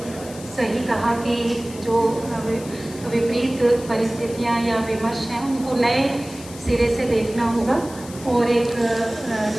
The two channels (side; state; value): left; noise; hiss, 17 dB below the sound